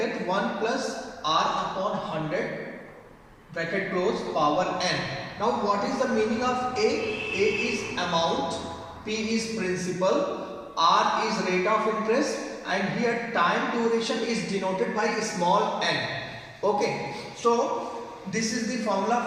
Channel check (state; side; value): identical; both; correlation 1.00